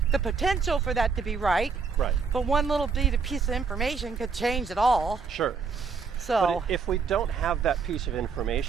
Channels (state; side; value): quieter; left; 5.3 dB